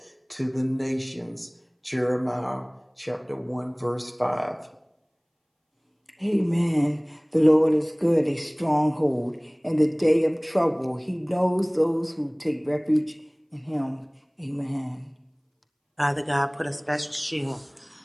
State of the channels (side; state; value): both; identical; correlation 1.00